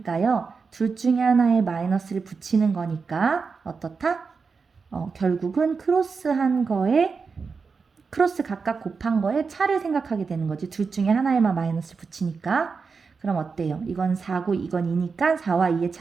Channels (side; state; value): left; quieter; 5.0 dB